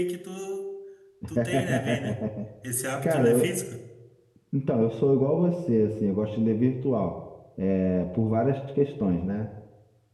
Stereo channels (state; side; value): identical; both; correlation 1.00